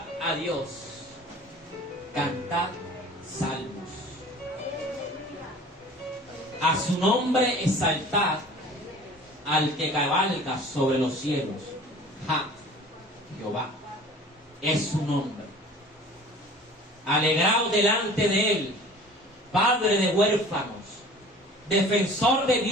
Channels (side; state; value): both; normal; correlation 0.45